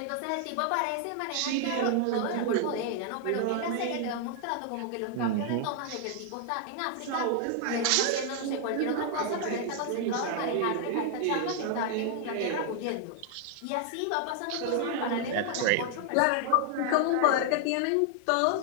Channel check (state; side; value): different; both; correlation 0.00